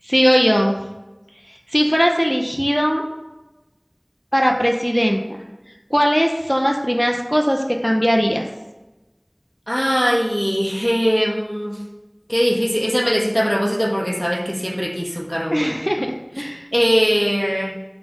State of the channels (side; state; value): both; identical; correlation 1.00